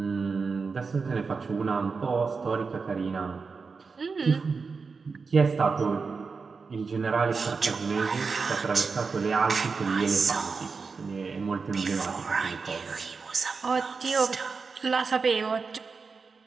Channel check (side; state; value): left; quieter; 4.8 dB